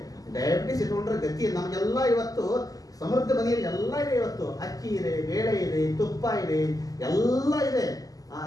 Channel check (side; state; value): right; late; 0.17 ms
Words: ಡಯಾಬಿಟಿಸ್ ಇಟ್ಕೊಂಡ್ರೆ ಗತಿ. ನಮಗೆಲ್ಲ ಇವತ್ತು ಸಮೃದ್ಧ ಮನೆಯಲ್ಲಿ ಎಲ್ಲ ಇದೆ. ಇವತ್ತು ಅಕ್ಕಿ ಇದೆ, ಬೇಳೆ ಇದೆ, ತುಪ್ಪ ಇದೆ, ಎಲ್ಲ ಇದೆ.